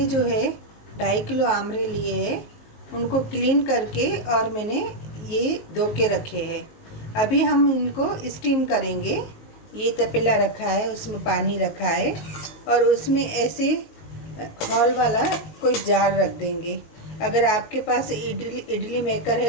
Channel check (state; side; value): late; right; 19 ms